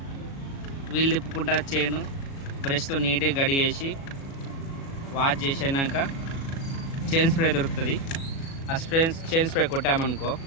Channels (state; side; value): late; right; 36 ms